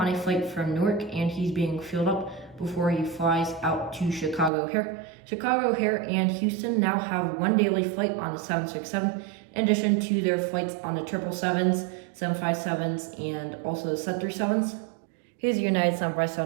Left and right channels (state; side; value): drops out; left; at 4.5 s